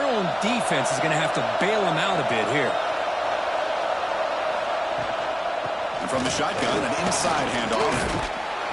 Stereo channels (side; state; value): both; identical; correlation 1.00